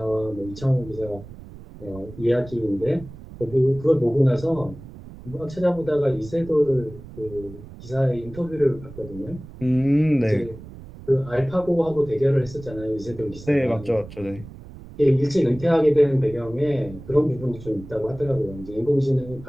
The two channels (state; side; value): noise; right; rumble, 16 dB below the sound